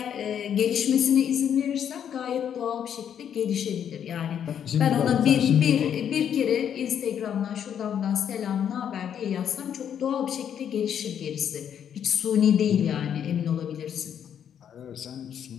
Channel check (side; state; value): right; quieter; 8.9 dB